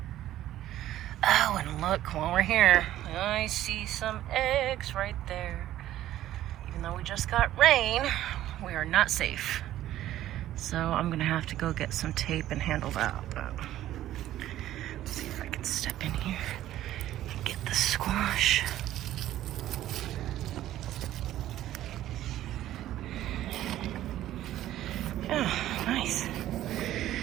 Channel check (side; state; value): left; quieter; 13.4 dB